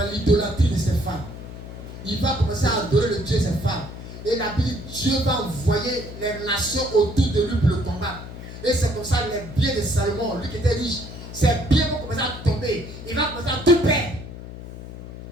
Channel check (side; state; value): left; noise; hum, 12 dB below the sound